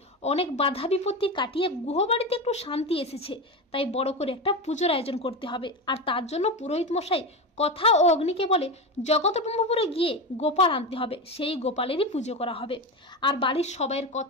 অনেক বাধা বিপত্তি কাটিয়ে গুহবাড়িতে একটু শান্তি এসেছে, তাই বড় করে একটা পুজোর আয়োজন করতে হবে। আর তার জন্য পুরোহিত মশাই কথা ও অগ্নিকে বলে জগৎবল্লভপুরে গিয়ে গোপাল আনতে হবে, সেই গোপালেরই পুজো করা হবে। আর বাড়ির সবাইয়ের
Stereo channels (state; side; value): normal; both; correlation 0.19